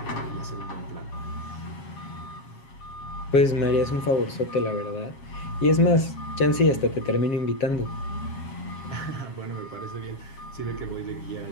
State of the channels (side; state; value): right; late; 7.4 ms